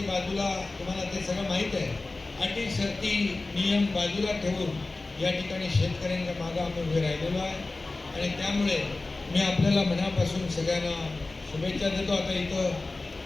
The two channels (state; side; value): quieter; right; 3.3 dB